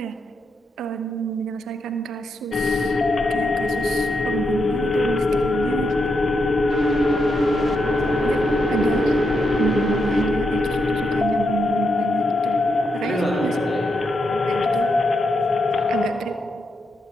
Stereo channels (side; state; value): both; normal; correlation 0.82